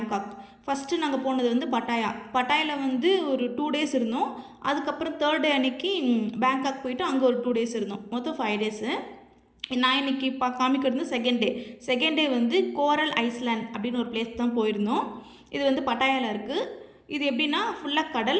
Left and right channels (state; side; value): identical; both; correlation 1.00